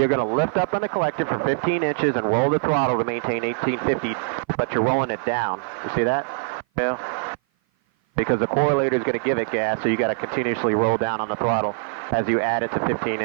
going to lift up on the collective for 15 inches and roll the throttle to maintain 1850, but you're rolling it down. You see that? Yeah. Because the correlator is going to give it gas, so you got to continuously roll down on the throttle as you add it to 15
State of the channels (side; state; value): left; silent; 56 dB below the other